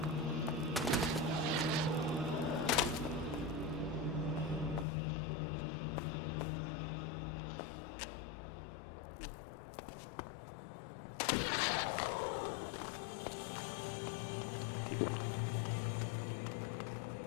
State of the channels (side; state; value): right; drops out; at 4.9 s